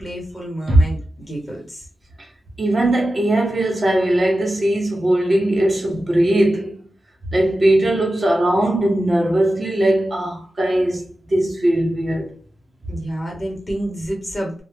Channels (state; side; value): normal; both; correlation 0.93